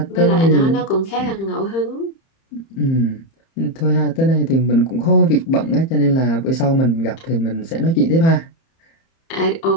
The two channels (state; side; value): late; right; 30 ms